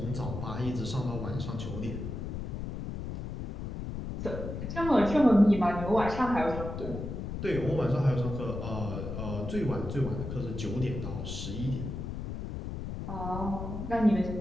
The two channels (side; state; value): left; noise; rumble, 6 dB below the sound